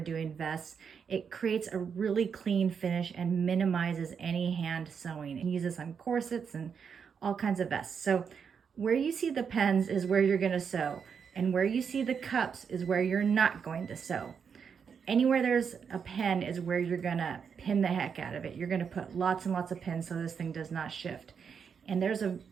vests. It creates a really clean finish and minimizes any hand sewing. And use this on corsets and all kinds of vests. So where you see the pens is where you're going to sew, and where you see the cups is where you're not going to sew. Anywhere there's a pen is where you're going to pin the heck out of it. You're going to put lots and lots of pins so this thing does not shift. And there's a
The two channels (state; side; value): quieter; left; 6.6 dB